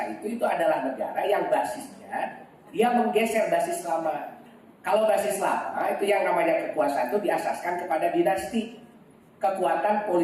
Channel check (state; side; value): identical; both; correlation 1.00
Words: itu adalah negara yang basisnya dia menggeser basis lama. Kalau basis lama itu yang namanya kekuasaan itu diasaskan kepada dinasti, kekuatan